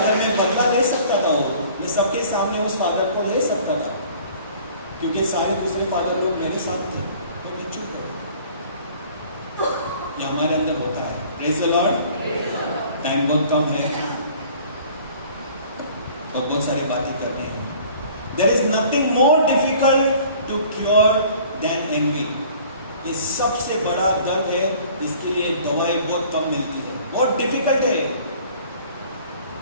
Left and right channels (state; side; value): inverted; both; correlation -0.51